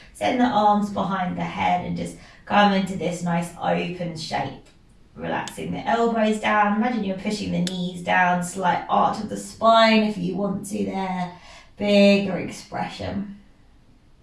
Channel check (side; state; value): both; identical; correlation 1.00